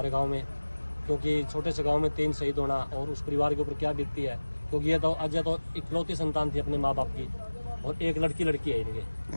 गांव में, क्योंकि छोटे से गांव में 3 शहीद होना और उस परिवार के ऊपर क्या बीतती है। क्योंकि ये तो अजय तो इकलौती संतान थी अपने माँ बाप की, और एक लड़की है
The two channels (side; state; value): both; inverted; correlation -1.00